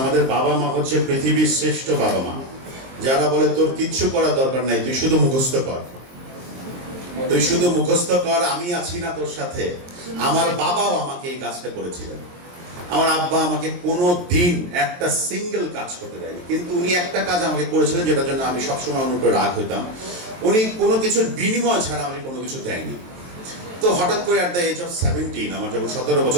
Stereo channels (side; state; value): left; late; 23 ms